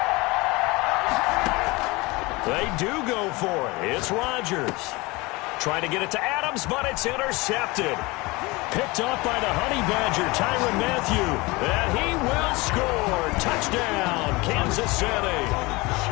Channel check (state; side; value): quieter; right; 23.7 dB